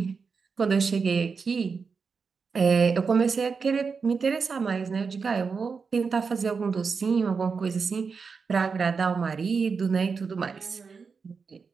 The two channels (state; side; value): quieter; left; 5.2 dB